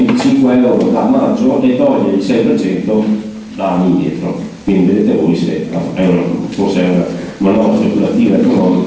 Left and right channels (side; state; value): both; identical; correlation 1.00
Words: euro da maggio e toglie il 6% da anni indietro. Quindi vedete voi se forse è una manovra speculativa